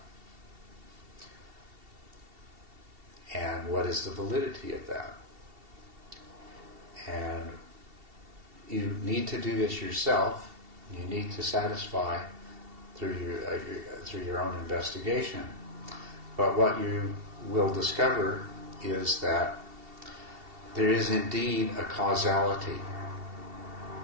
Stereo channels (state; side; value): late; left; 2.7 ms